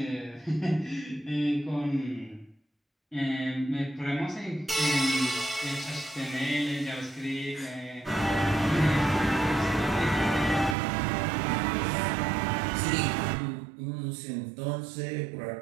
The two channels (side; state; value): left; drops out; at 10.8 s